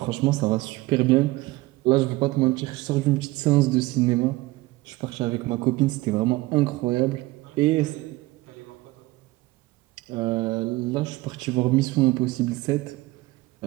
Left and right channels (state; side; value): quieter; left; 20.0 dB